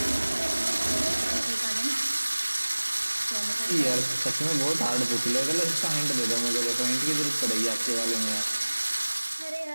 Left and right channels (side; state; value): both; inverted; correlation -1.00